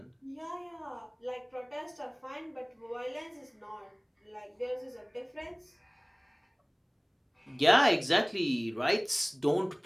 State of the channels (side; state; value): both; identical; correlation 1.00